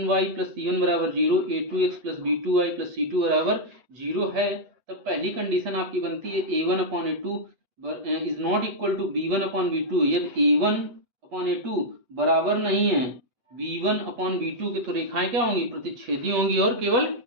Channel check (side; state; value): left; late; 8.1 ms